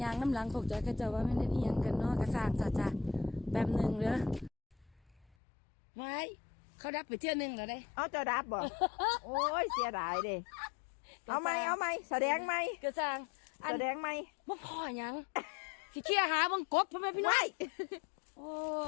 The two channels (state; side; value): drops out; right; at 5.2 s